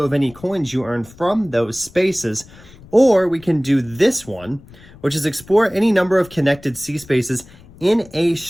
of any coins you earn from those spaces. Or we can do this one, which is explore any number of connected sea spaces in a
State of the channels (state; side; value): noise; left; rumble, 22 dB below the sound